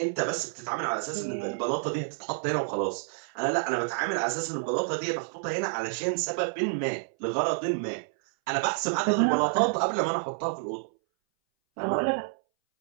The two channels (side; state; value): left; silent; 59 dB below the other